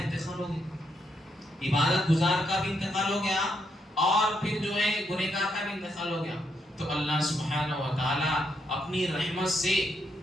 ہو گیا، عبادت گزار کا بھی انتقال ہو گیا اور پھر جو ہے گنہگار کا بھی انتقال ہو گیا۔ تو اللہ سبحانہ و تعالی اپنی رحمت سے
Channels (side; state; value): both; normal; correlation 0.78